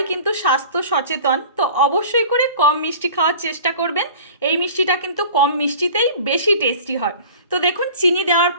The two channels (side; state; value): both; inverted; correlation -0.43